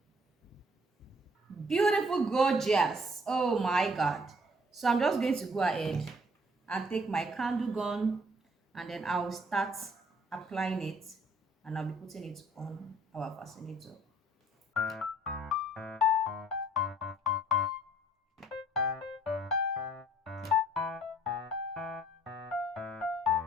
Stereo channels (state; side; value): normal; both; correlation 0.59